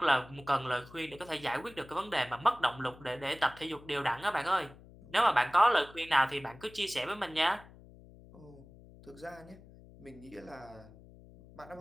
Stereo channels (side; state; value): left; noise; hum, 21 dB below the sound